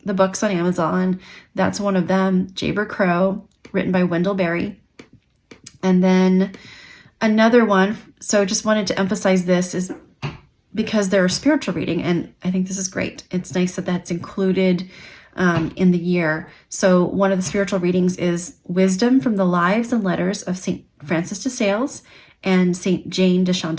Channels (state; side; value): identical; both; correlation 1.00